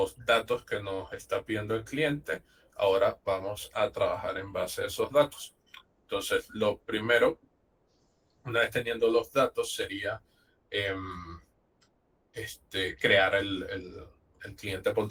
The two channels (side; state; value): both; identical; correlation 1.00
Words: datos que nos está pidiendo el cliente. Ahora vamos a trabajar en base a esos datos. Entonces, lo primero, una vez teniendo los datos, sería crear el cliente